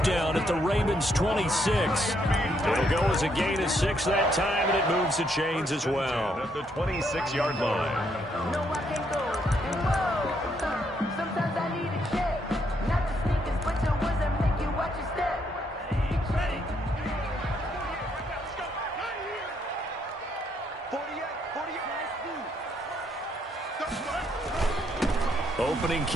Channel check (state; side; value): normal; both; correlation 0.73